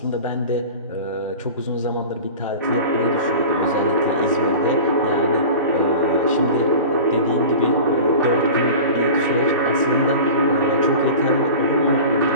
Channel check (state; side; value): inverted; both; correlation -0.36